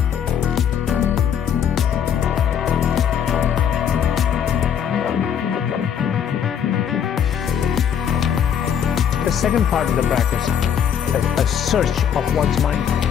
second part of the practice, a search of one's mind.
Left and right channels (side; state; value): right; quieter; 8.5 dB